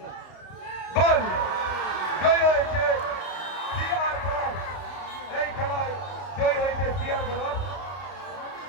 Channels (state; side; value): late; right; 32 ms